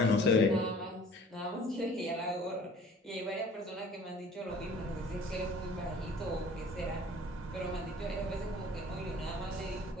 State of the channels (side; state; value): both; normal; correlation 0.49